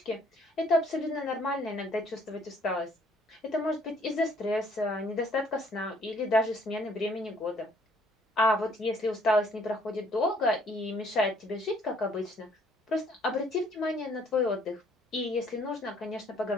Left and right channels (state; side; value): normal; both; correlation 0.63